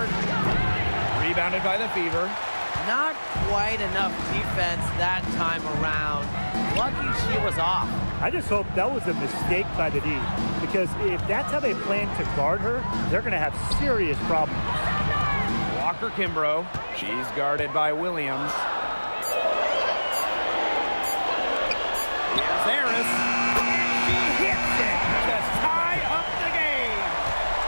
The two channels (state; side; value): inverted; both; correlation -1.00